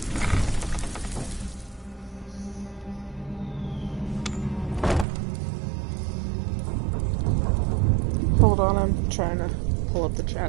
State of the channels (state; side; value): drops out; left; at 5.1 s